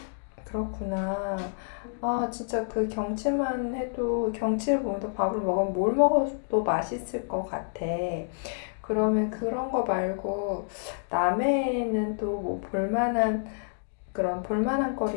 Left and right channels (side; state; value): right; silent; digital silence